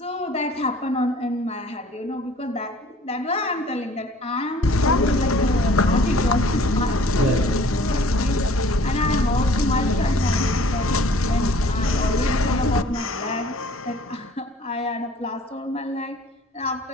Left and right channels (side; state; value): both; normal; correlation 0.53